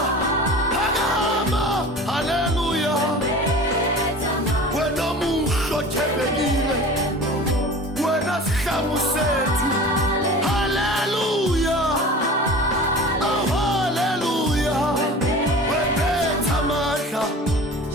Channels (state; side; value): normal; both; correlation 0.38